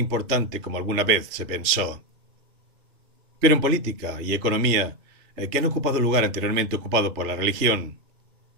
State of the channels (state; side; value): late; left; 3.3 ms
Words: como alguna vez se pensó. Pero en política y economía, que han ocupado el lugar anteriormente ocupado por la religión,